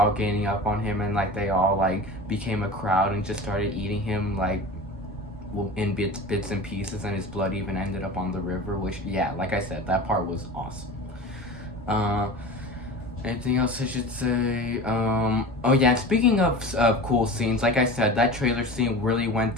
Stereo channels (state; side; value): normal; both; correlation 0.33